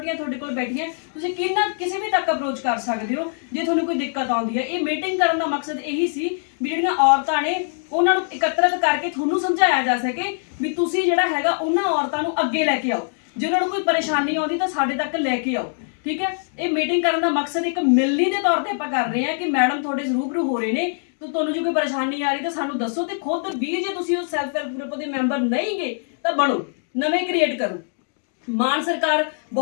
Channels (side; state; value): right; silent; digital silence